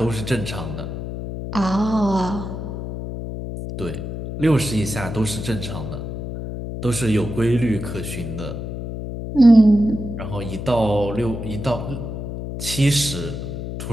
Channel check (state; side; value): noise; left; hum, 6 dB below the sound